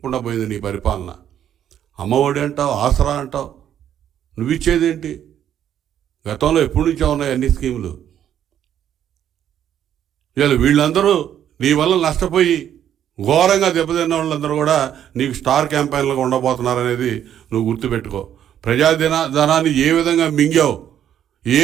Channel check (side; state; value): left; quieter; 10.1 dB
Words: పోయింది నీ పరిపాలన. అమ్మఒడి అంటావు, ఆసరా అంటావు, నువ్వు ఇచ్చేదేంటి? గతంలో ఎప్పటి నుంచో ఉన్నాయి అన్ని స్కీములు. ఇవాళ వీళ్ళందరూ నీ వల్ల నష్టపోయి ఘోరంగా దెబ్బతిన్న వాళ్ళందరూ కూడా నీకు స్టార్ క్యాంపెయిన్లుగా ఉండబోతున్నారనేది నువ్వు గుర్తుపెట్టుకో. ప్రజాధనాన్ని ఏ విధంగా మింగావు, ఏ